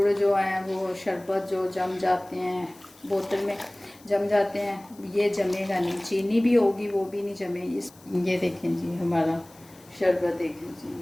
जो है वो शरबत जो जम जाते हैं, बोतल में जम जाते हैं, ये जमेगा नहीं। चीनी भी होगी, वो भी नहीं जमे। ये देखें जी, हमारा शरबत देखें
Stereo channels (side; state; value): left; noise; hiss, 26 dB below the sound